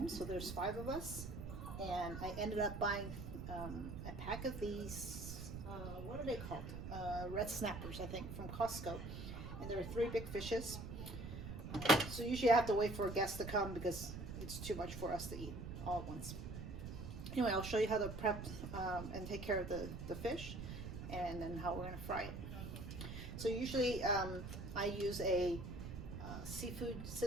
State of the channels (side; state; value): right; noise; rumble, 7 dB below the sound